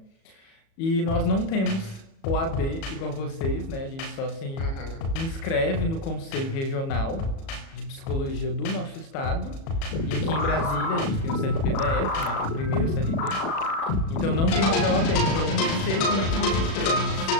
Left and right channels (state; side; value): late; right; 37 ms